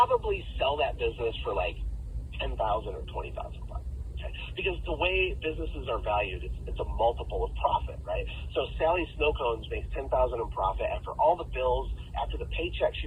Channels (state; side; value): identical; both; correlation 1.00